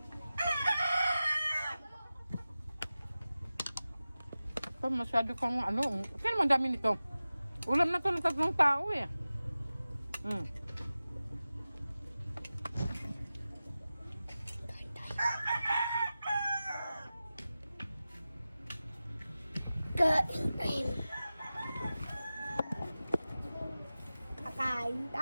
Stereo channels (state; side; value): inverted; both; correlation -0.95